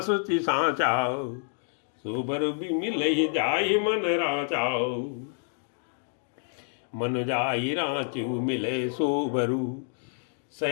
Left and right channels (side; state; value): right; silent; 59 dB below the other